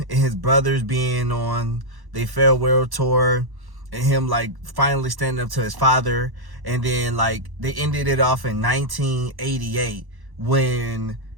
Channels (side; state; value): left; late; 1.1 ms